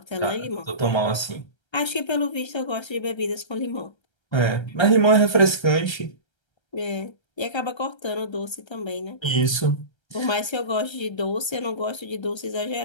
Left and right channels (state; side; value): late; right; 1.3 ms